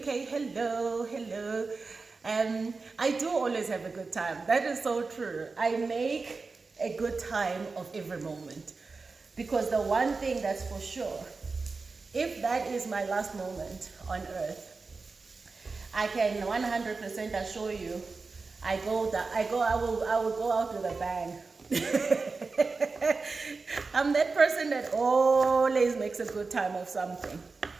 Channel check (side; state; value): left; quieter; 4.2 dB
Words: hello. I do always have a good time. That is so true. I make a good time of every moment, because the one thing that's for sure, if that is my last moment on earth, I can 100% assure you, I will go out with a bang. I'm that person that always makes a good time of something.